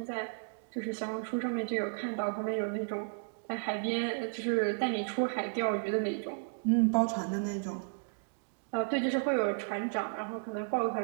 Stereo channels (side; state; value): left; silent; digital silence